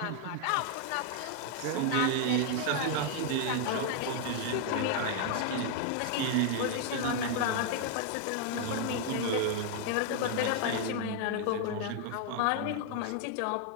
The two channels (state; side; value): different; both; correlation 0.00